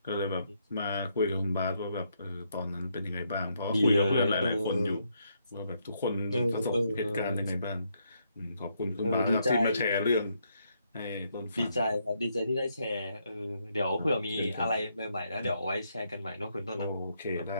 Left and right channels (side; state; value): both; inverted; correlation -0.76